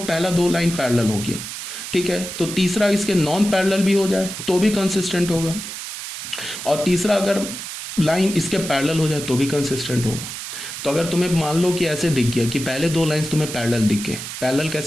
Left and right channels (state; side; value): noise; right; hiss, 8 dB below the sound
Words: 2 लाइन पैरेलल हो गया, ठीक है, तो तीसरा इसके नॉन पैरेलल भी हो जाए तो भी कंसिस्टेंट होगा, और तीसरा अगर लाइन इसके पैरेलल हो जाए तो भी कंसिस्टेंट होगा। तो अगर तुम्हें मान लो कि ऐसे दिख गया कि पहले 2 लाइंस तुम्हें पैरेलल दिख गए, पैरेलल